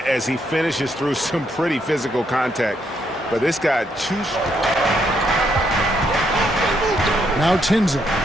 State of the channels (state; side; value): normal; both; correlation 0.75